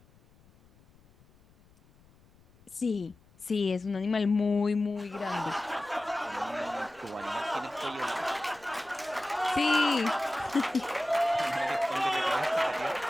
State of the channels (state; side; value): noise; left; rumble, 29 dB below the sound